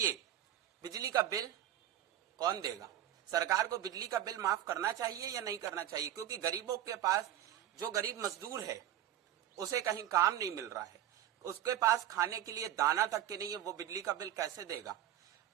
बिजली का बिल कौन देगा? सरकार को बिजली का बिल माफ करना चाहिए या नहीं करना चाहिए? क्योंकि गरीबों के पास, जो गरीब मजदूर है उसे कहीं काम नहीं मिल रहा है, उसके पास खाने के लिए दाना तक के नहीं है, वो बिजली का बिल कैसे देगा?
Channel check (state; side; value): quieter; left; 11.5 dB